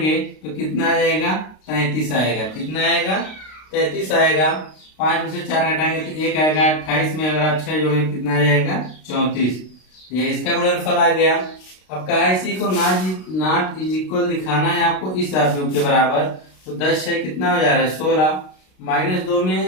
तो कितना आ जाएगा, 33 आएगा। कितना आएगा, 33 आएगा। 5 में से 4 घटाएंगे तो 1 आएगा। 28 में अगर आप 6 जोड़ेंगे कितना आ जाएगा, 34। ये इसका गुणनफल आ गया। अब कहा इसी को नॉट इज इक्वल दिखाना है आपको इस आव्यूह के बराबर। तो 10 6 कितना हो जा रहा है, 16। -2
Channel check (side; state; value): right; late; 32 ms